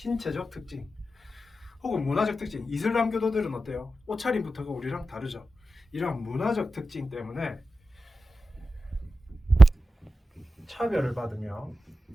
특징. 혹은 문화적 특징, 이슬람 교도들은 어때요? 옷차림부터가 우리랑 다르죠. 이런 문화적 특징 때문에 차별을 받으며,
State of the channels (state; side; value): normal; both; correlation 0.92